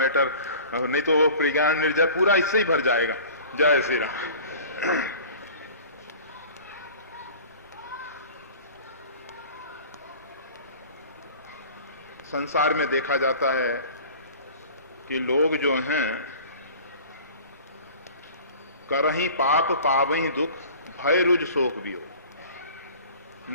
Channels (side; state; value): both; inverted; correlation -0.43